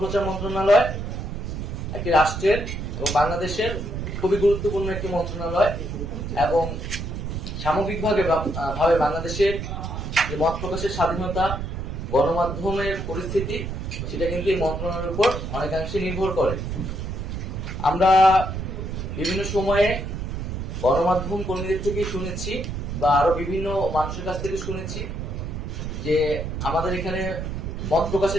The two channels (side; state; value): right; noise; rumble, 5 dB below the sound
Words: মন্ত্রণালয় একটি রাষ্ট্রের এবং বাংলাদেশের খুবই গুরুত্বপূর্ণ একটি মন্ত্রণালয়, এবং সামগ্রিকভাবে বাংলাদেশের যে মত প্রকাশের স্বাধীনতা, গণমাধ্যমের পরিস্থিতি, সেটা কিন্তু এই মন্ত্রণালয়ের উপর অনেকাংশে নির্ভর করে। আমরা বিভিন্ন সময়ে গণমাধ্যম কর্মীদের থেকে শুনেছি বা আরো বিভিন্ন মানুষের কাছ থেকে শুনেছি যে আমাদের এখানে মত